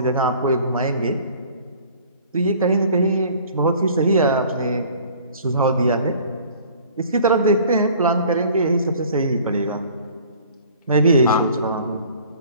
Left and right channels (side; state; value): both; inverted; correlation -0.50